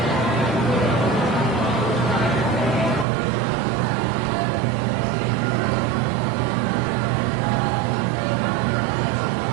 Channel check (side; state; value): left; drops out; at 3.1 s